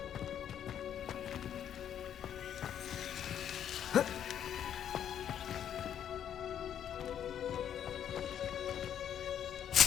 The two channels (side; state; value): right; quieter; 9.5 dB